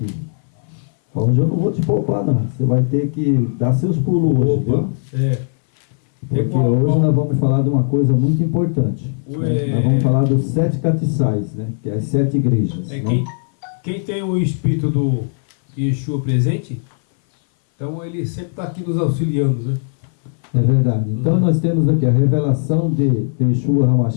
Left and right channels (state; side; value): silent; right; 61 dB below the other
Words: Hoje eu não vou te poupar, não. Você vai ter que dar seus pulos hoje, viu? Porque hoje nós vamos falar de uma coisa muito importante. Né? Nós vamos falar dos 7 castiçais, né? Que é as 7 igrejas. Né? Quem tem o espírito do Yeshua presente, então ele sempre está aqui nos auxiliando, né? É verdade. Então nós temos aqui a revelação de Yeshua